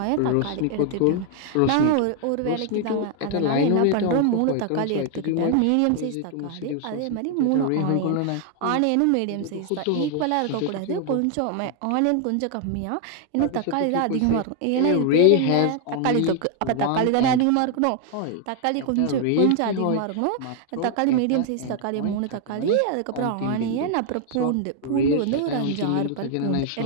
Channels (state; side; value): different; both; correlation 0.00